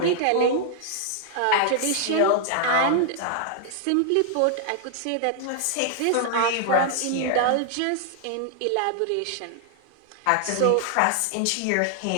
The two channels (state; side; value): different; both; correlation 0.00